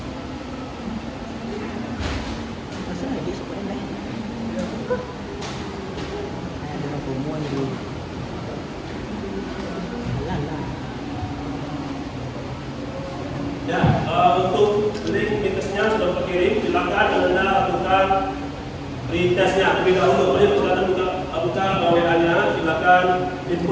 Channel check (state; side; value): identical; both; correlation 1.00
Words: tesnya terlebih dahulu. Mari silakan buka WA-nya, silakan